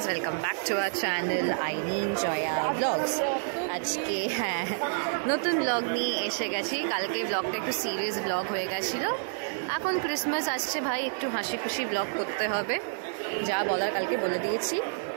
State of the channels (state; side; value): silent; left; digital silence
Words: welcome back to our channel আইনিন জয়া ব্লগস। আজকে নতুন ব্লগ নিয়ে এসে গেছি। কালকে ব্লগটা একটু সিরিয়াস ব্লগ হয়ে গেছিলো। এখন ক্রিসমাস আসছে ভাই, একটু হাসি খুশি ব্লগ করতে হবে। যা বলার কালকে বলে দিয়েছি।